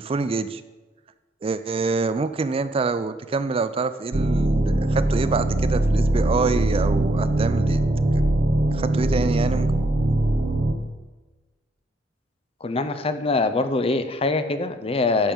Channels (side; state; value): both; normal; correlation 0.69